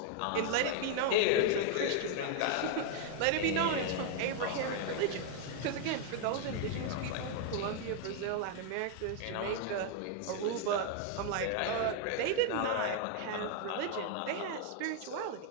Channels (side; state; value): both; different; correlation 0.00